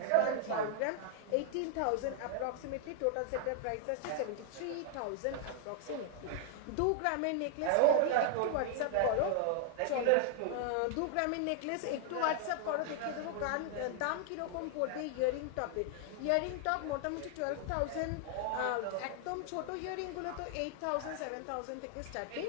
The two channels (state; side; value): different; both; correlation 0.00